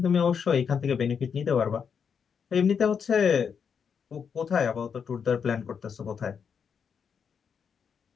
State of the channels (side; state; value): right; quieter; 6.8 dB